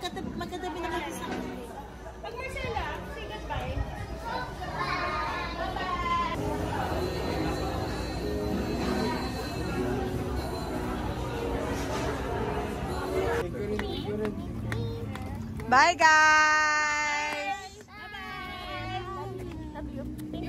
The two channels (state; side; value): identical; both; correlation 1.00